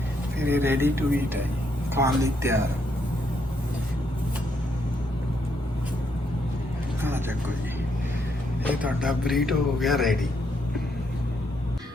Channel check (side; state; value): both; normal; correlation 0.76